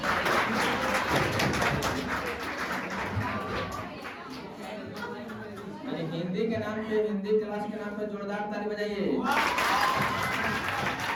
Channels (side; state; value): both; identical; correlation 1.00